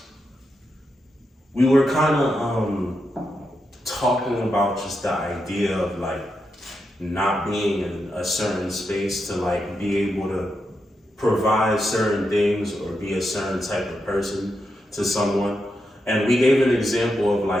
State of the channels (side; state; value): both; normal; correlation 0.85